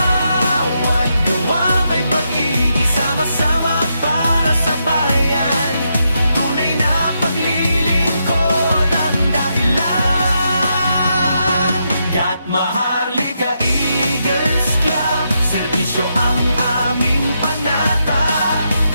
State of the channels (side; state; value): both; inverted; correlation -0.82